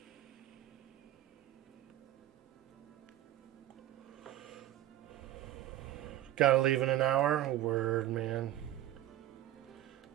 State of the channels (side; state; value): left; quieter; 13.7 dB